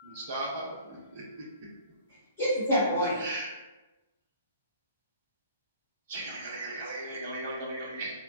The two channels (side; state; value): both; inverted; correlation -0.49